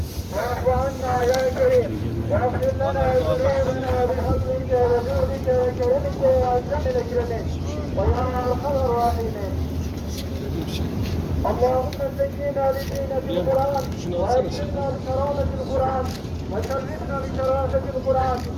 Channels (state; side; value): identical; both; correlation 1.00